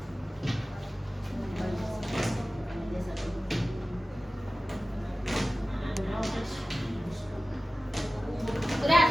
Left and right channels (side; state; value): both; normal; correlation 0.96